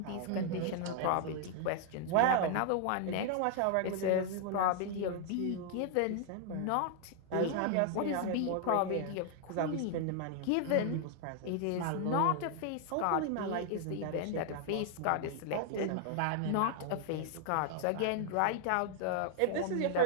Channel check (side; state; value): both; different; correlation 0.00